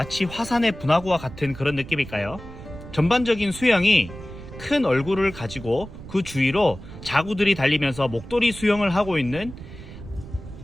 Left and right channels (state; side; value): noise; right; rumble, 14 dB below the sound